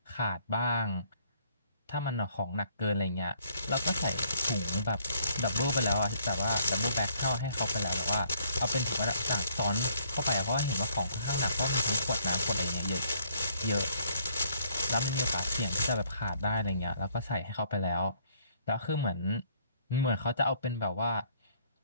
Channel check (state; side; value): inverted; both; correlation -0.65